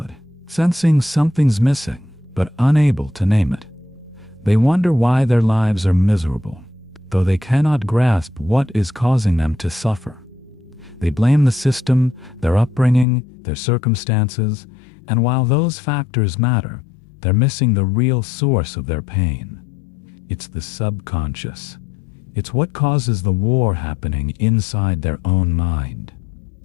sensing something's missing, but unable to name it. They wonder why their lives are miserable, though they cannot grasp what is causing them to suffer. They blame the system, their upbringing, their circumstances, and while those factors matter, they're missing the real source of their pain. It's the subconscious. It's what causes the war happening inside their own mind.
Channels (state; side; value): drops out; right; at 13.1 s